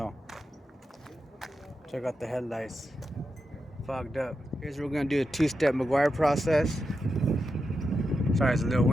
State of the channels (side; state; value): both; normal; correlation 0.88